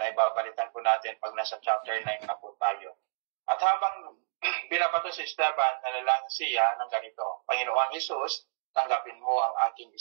babalitan po natin pag nasa chapter 9 na po tayo. At habang binabato si Esteban, nanalangin siya ng ganito, Panginoong Jesus, tanggapin mo ang aking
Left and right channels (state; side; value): silent; left; digital silence